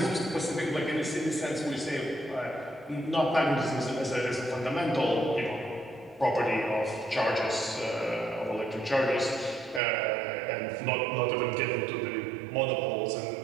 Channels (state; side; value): drops out; left; at 9.8 s